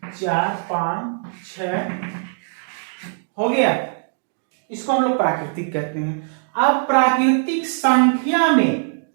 4 5 6, हो गया, इसको हम लोग प्राकृतिक कहते हैं। अब प्राकृतिक संख्या में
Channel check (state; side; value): silent; left; digital silence